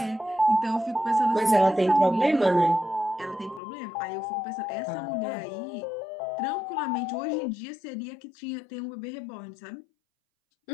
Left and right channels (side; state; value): right; drops out; at 3.6 s